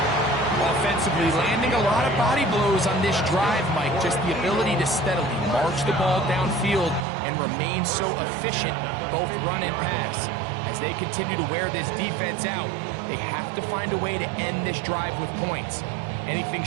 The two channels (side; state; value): left; drops out; at 7.1 s